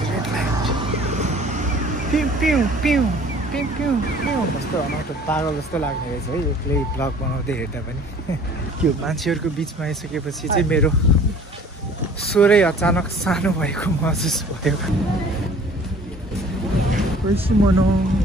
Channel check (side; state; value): both; normal; correlation 0.50